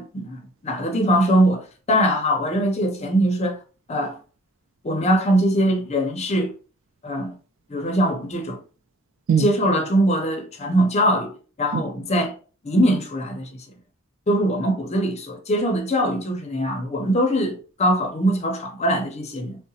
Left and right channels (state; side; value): normal; both; correlation 0.50